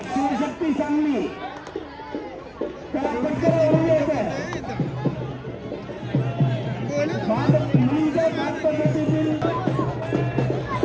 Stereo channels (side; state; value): both; identical; correlation 1.00